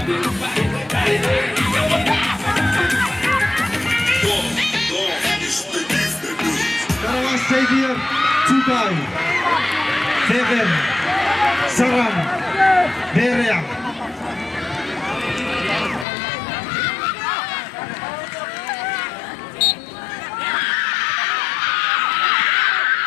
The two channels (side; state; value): right; drops out; at 16.1 s